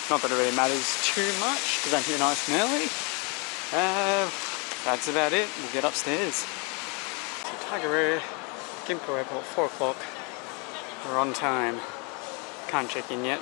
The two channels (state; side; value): quieter; right; 32.4 dB